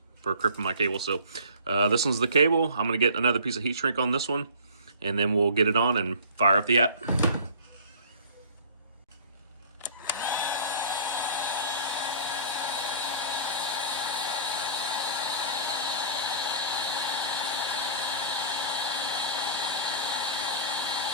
for crimping my cable. So this one's the cable. I'm going to get another piece of heat shrink on this one, and then we'll get it on and fire up the app.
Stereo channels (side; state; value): both; inverted; correlation -0.46